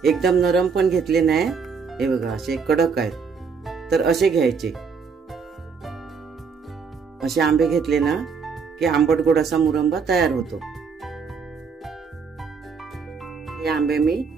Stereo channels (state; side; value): quieter; left; 5.6 dB